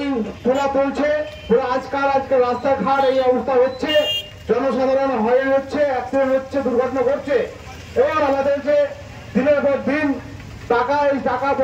তোলা চলছে, আজকাল রাস্তাঘাট এই অবস্থা হচ্ছে, জনসাধারণ হয়রান হচ্ছে, অ্যাক্সিডেন্ট হচ্ছে, দুর্ঘটনা ঘটছে। এবার আমাদেরকে দিনের পর দিন এই টাকা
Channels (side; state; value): both; identical; correlation 1.00